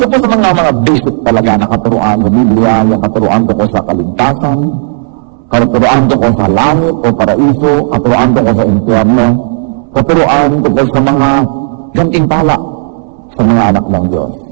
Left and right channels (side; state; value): left; silent; digital silence